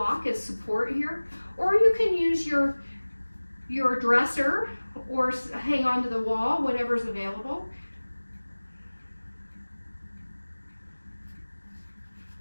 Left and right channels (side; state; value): both; inverted; correlation -1.00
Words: as support here, or you can use your dresser or hang onto the wall, whatever's available.